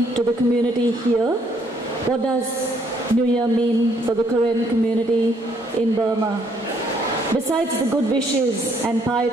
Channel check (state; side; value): normal; both; correlation 0.68